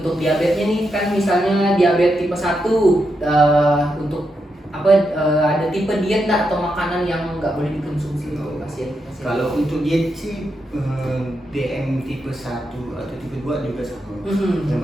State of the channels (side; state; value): both; normal; correlation 0.84